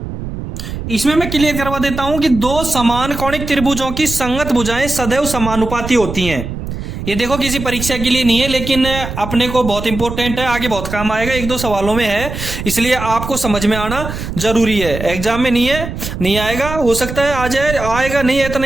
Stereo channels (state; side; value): noise; right; rumble, 7 dB below the sound